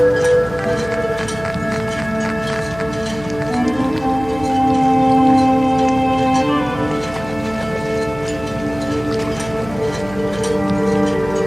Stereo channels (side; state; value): right; noise; hum, 16 dB below the sound